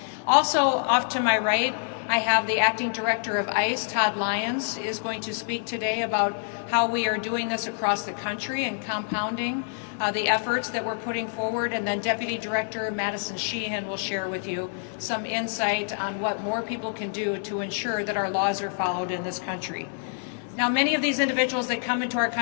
Also, off to my right, I have the Acting Director of ICE, Todd Lyons, is going to speak today about how we are doing this across the country and compounding the efforts that we're putting forward. And then Deputy Director Madison Sheehan will share with you some insight on what more people can do to ensure that our laws are followed in this country. Now, many of these individuals that come into our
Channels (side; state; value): right; silent; digital silence